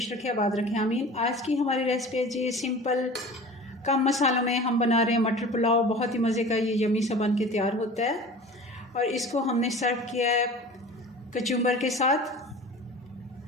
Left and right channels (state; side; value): normal; both; correlation 0.39